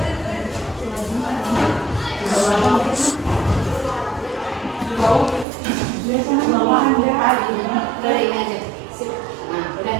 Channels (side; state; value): left; drops out; at 5.5 s